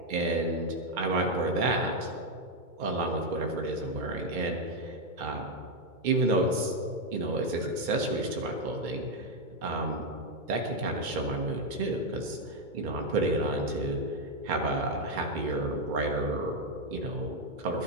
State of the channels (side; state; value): left; late; 2.2 ms